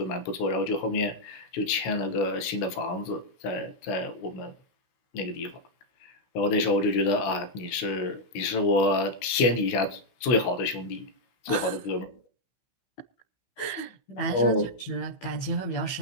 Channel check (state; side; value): late; right; 16 ms